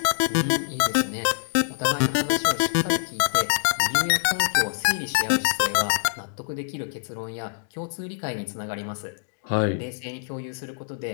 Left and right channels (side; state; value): right; silent; digital silence